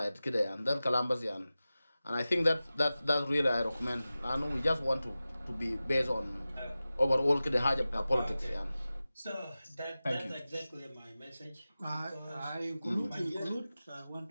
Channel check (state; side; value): inverted; both; correlation -0.95